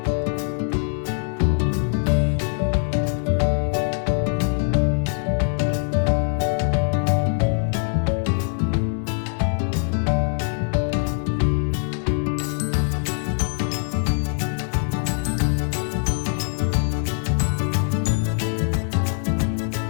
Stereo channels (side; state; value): right; silent; 56 dB below the other